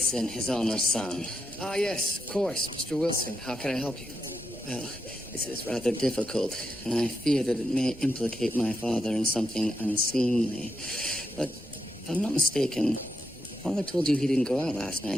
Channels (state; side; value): normal; both; correlation 0.83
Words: his owner's son. Ah, yes, of course. Mr. Wilson, how can I help you? Well, this is rather difficult, and I fear that it may implicate my father in something unseemly. But if I'm not mistaken, Father told you he didn't go out last